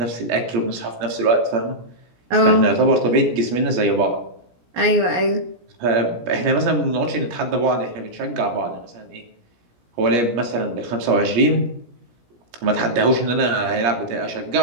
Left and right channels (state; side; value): late; left; 17 ms